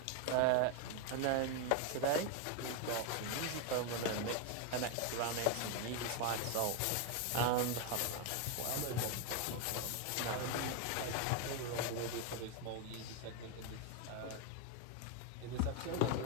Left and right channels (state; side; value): different; both; correlation 0.02